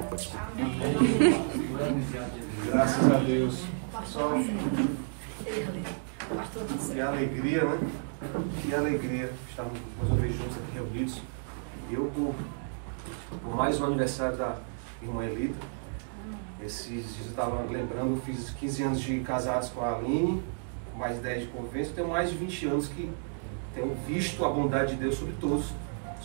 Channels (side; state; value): left; silent; 57 dB below the other